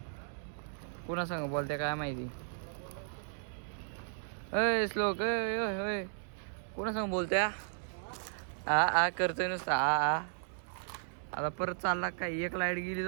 कोणा सांग बोलते काय माहिती. अय श्लोक अय कोणा सांग बोलते. आ करतोय नुसतं आ. आता परत चालला काय. एक लाईट गेली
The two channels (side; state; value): left; silent; 54 dB below the other